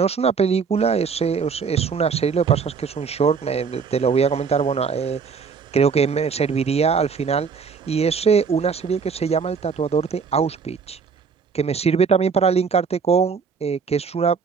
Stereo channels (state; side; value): quieter; left; 5.7 dB